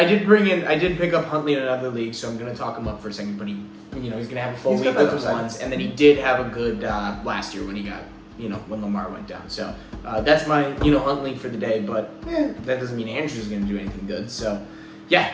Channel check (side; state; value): both; identical; correlation 1.00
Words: up Huntley in another league, so I'm gonna talk him up for a second. But he's gonna have a full He's week got that with the upside. ones, and then he did have a good last year when he got when Lamar went down. So that's my Huntley for the day. But that doesn't mean Andrews is gonna do anything good. So